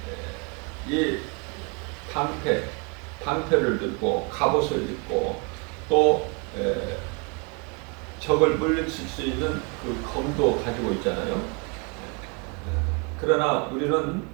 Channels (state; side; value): quieter; left; 31.8 dB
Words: 이 방패를 들고 갑옷을 입고 또 적을 물리칠 수 있는 그 검도 가지고 있잖아요. 그러나 우리는